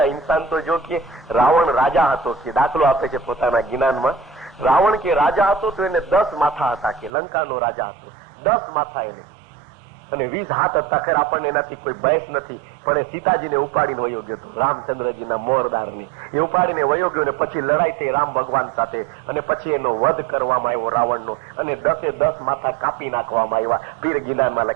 ઇન્સાન તો જો કે રાવણ રાજા હતો કે દાખલો આપે છે પોતાના જ્ઞાનમાં. રાવણ કે રાજા હતો તો એને 10 માથા હતા કે લંકાનો રાજા હતો. 10 માથા એને અને 20 હાથ હતા. ખરે આપણને એનાથી કોઈ બહેસ નથી, પણ એ સીતાજીને ઉપાડીને વયો ગયો હતો, રામચંદ્રજીના મોરદારને એ ઉપાડીને વયો ગયો. ને પછી લડાઈ થઈ રામ ભગવાન સાથે અને પછી એનો વધ કરવામાં આવ્યો રાવણનો અને 10 માથા કાપી નાખવામાં આવ્યા. પીર ગિલાનમાં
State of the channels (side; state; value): left; drops out; at 7.1 s